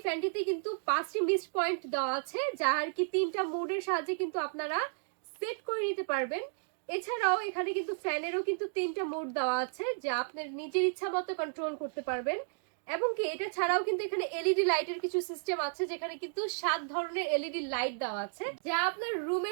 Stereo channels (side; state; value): left; silent; digital silence